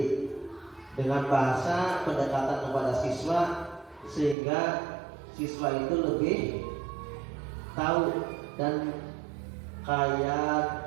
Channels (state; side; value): drops out; left; at 4.4 s